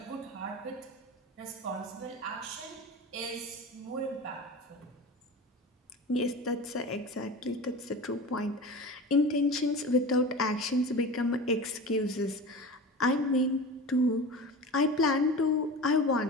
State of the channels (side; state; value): both; normal; correlation 0.32